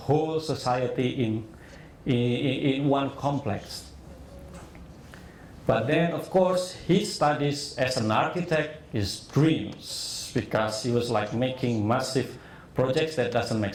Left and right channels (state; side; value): identical; both; correlation 1.00